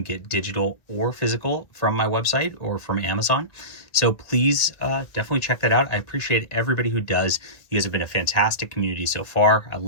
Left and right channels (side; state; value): right; late; 1.8 ms